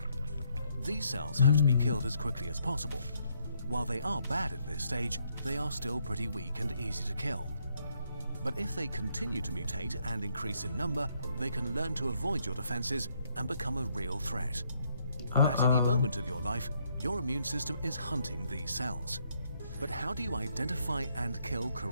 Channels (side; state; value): both; inverted; correlation -0.73